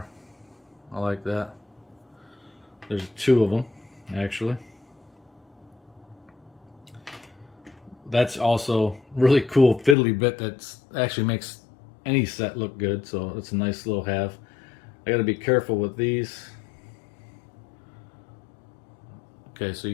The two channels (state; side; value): drops out; right; at 10.0 s